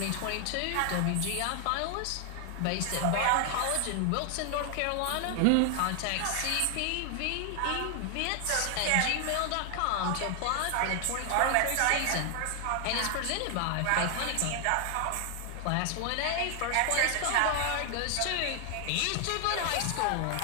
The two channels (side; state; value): both; different; correlation 0.00